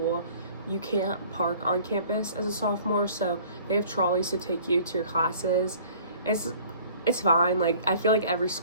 You can't park on campus as a sophomore, so they have trolleys to take you to your classes. It's fine. Like I feel like every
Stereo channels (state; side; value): inverted; both; correlation -0.51